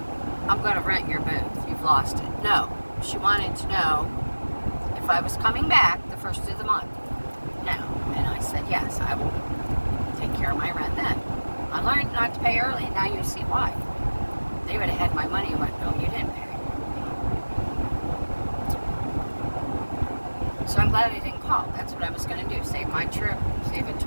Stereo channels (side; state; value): both; inverted; correlation -1.00